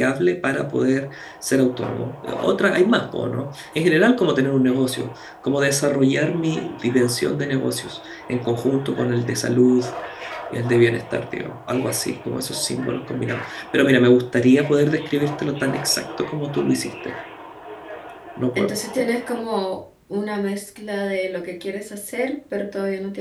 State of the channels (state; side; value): identical; both; correlation 1.00